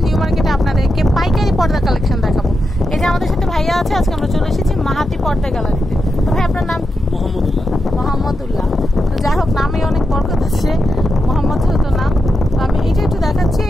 নিউ মার্কেটে আপনাদেরকে পাইকারি পর্দা কালেকশন দেখাবো। এই যে আমাদের সাথে ভাইয়া আছে, আজকে আমরা চলে এসেছি মাহাতি পর্দা গ্যালারিতে। তো ভাই আপনার নাম কি? মোহাম্মদুল্লাহ। তো যাই হোক, নামে অনেক বরকত আছে, মোহাম্মদ তো নাম। তো আমি এইটা একটু দেখাচ্ছি,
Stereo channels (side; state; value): both; normal; correlation 0.87